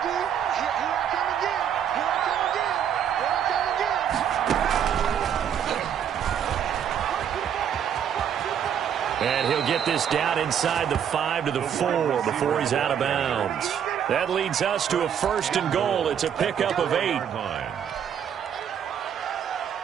And he'll get this down inside the 5 to the 4 before he's out of bounds. That leads us to a 1st and goal. It's a pickup of 8.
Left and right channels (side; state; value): left; quieter; 8.8 dB